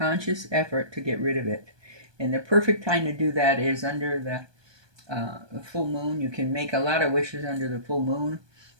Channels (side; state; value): left; late; 1.2 ms